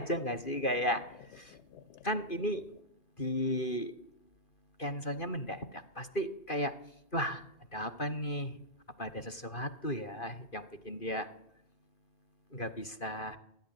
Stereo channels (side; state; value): right; late; 2.5 ms